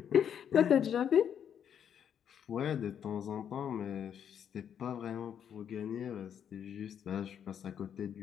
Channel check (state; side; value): quieter; right; 8.6 dB